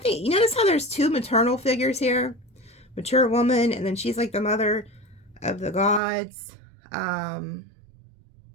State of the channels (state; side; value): drops out; left; at 6.0 s